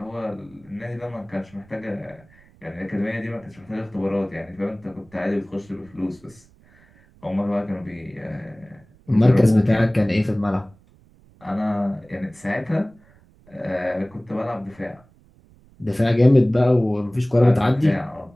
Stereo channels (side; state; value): right; noise; rumble, 28 dB below the sound